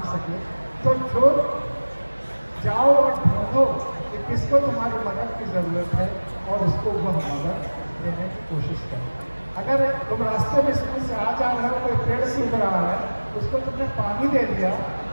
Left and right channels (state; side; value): inverted; both; correlation -1.00